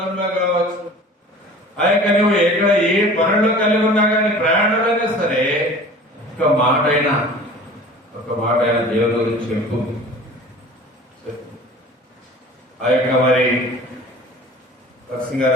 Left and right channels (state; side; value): normal; both; correlation 0.43